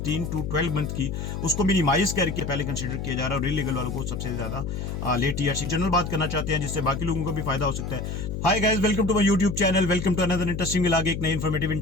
टू 12 मंथ की, उसको मिनिमाइज करके पहले कंसीडर किया जा रहा है और इलीगल वालों को सबसे ज्यादा लेट टीआरसी जनरल बात करना चाहते हैं जिससे बाकी लोगों को भी फायदा हो सकता है। Hi guys, welcome to my YouTube channel, welcome to another interesting आगे एक नई इन्फॉर्मेटिव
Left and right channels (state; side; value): noise; left; hum, 5 dB below the sound